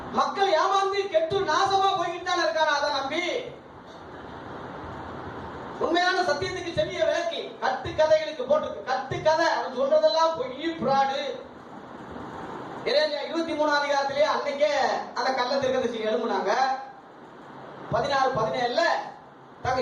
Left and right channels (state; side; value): identical; both; correlation 1.00